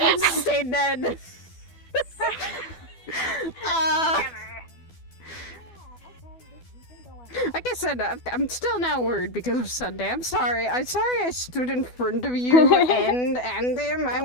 to stay dead. Like I said, I'm still now worried because of Sunday. I'm sorry. I stood in front of you and him. I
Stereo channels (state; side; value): late; right; 12 ms